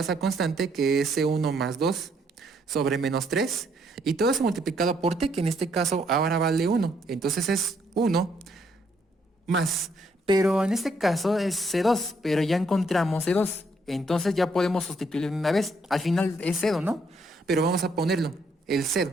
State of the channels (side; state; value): both; normal; correlation 0.71